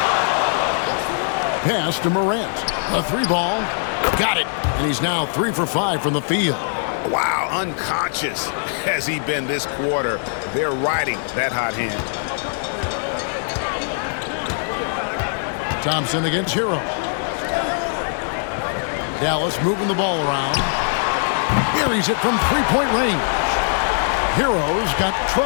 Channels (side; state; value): right; silent; digital silence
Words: Pass to Morant. A 3-ball. Got it. And he's now 3 for 5 from the field. Wow, unconscious has he been this quarter. They're riding that hot hand. Thompson against Hero. Dallas moving the ball around. Buries it from three-point range. Hero's got